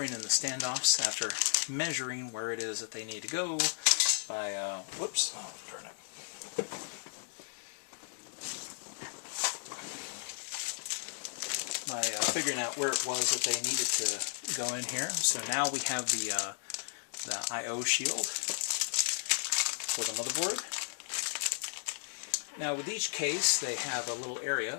in the standoffs after measuring where it is that they need to go by, whoops, oh darn it. By figuring out where it was that they needed to go in here. So now we have the I/O shield for the motherboard. Now with each case they have a little area,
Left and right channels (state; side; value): silent; right; digital silence